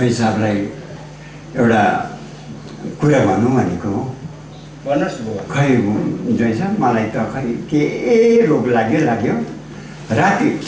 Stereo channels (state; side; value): identical; both; correlation 1.00